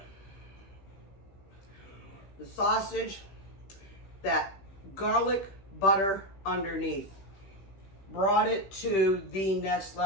The sausage, that garlic butter underneath, brought it to the next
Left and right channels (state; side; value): late; right; 15 ms